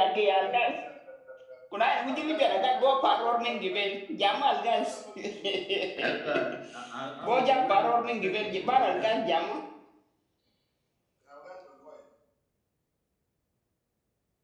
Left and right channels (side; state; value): both; identical; correlation 1.00